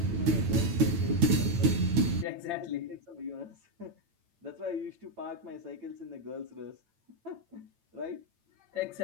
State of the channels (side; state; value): left; late; 9.0 ms